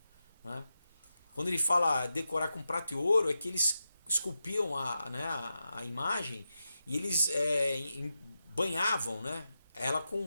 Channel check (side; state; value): both; inverted; correlation -0.89